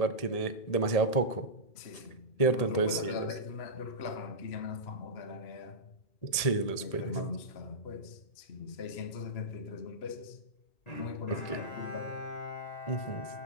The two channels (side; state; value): right; late; 1.8 ms